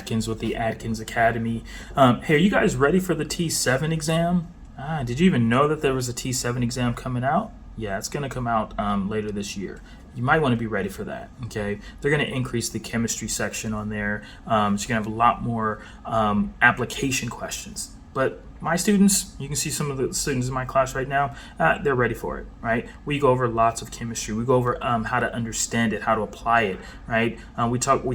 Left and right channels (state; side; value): identical; both; correlation 1.00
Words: with the Adkins Academy. Hey, are you guys ready for the TEAS VII exam? Did you even know that there was a TEAS VII exam coming out? Yeah, it's going to come out later this year. You might want to be ready for that, okay? They're going to increase the chemistry section on there, so you're going to have a lot more application questions. But my students, you can see some of the students in my class right now, they're ready for it, right? We go over lots of chemistry. We go over how to understand it, how to apply it, right? We